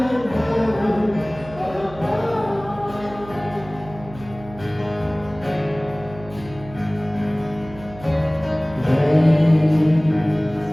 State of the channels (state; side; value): noise; right; hum, 17 dB below the sound